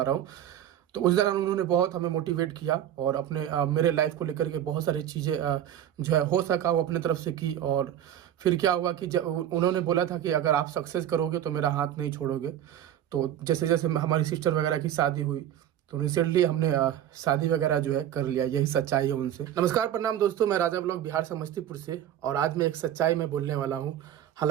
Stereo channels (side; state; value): left; quieter; 10.9 dB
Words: रहा हूँ। तो उस दौरान उन्होंने बहुत हमें मोटिवेट किया और अपने मेरे लाइफ को लेकर के बहुत सारी चीज़ें जो है हो सका वो अपने तरफ से की। और फिर क्या हुआ कि जब उन्होंने बोला था कि अगर आप सक्सेस करोगे तो मेरा हाथ नहीं छोड़ोगे। तो जैसे जैसे हमारी सिस्टर वगैरह की शादी हुई तो रिसेंटली हमने शादी वगैरह जो है कर लिया। यही सच्चाई है उनसे। नमस्कार, प्रणाम दोस्तों, मैं राजा ब्लॉग बिहार समस्तीपुर से, और आज मैं एक सच्चाई में बोलने वाला हूँ।